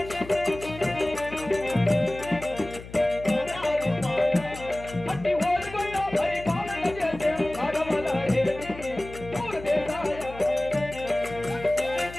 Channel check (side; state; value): left; noise; hum, 15 dB below the sound